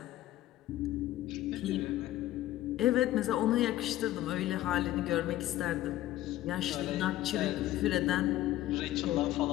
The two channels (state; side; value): quieter; right; 14.7 dB